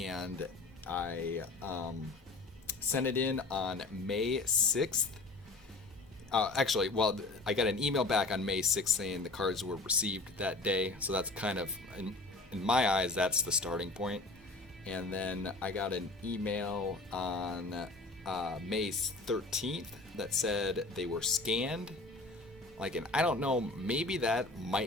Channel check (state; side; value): quieter; right; 3.4 dB